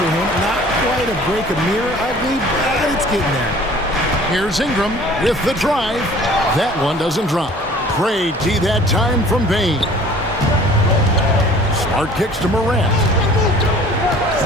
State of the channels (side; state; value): both; normal; correlation 0.50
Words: him. Not quite a break a mirror ugly, but it's getting there. Here's Ingram with the drive. That one doesn't drop. Great D that time from Bane. Smart kicks to Morant.